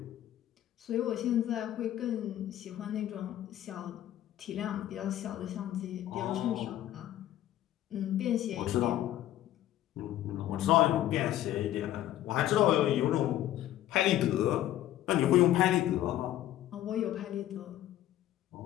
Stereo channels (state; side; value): quieter; right; 13.2 dB